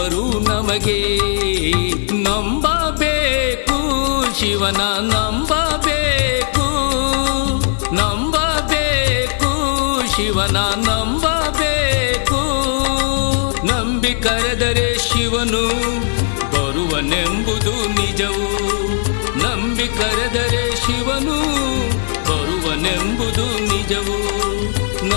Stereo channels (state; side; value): silent; right; digital silence